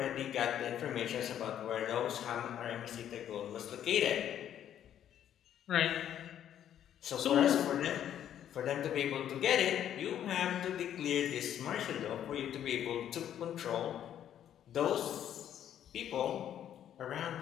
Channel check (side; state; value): right; quieter; 10.4 dB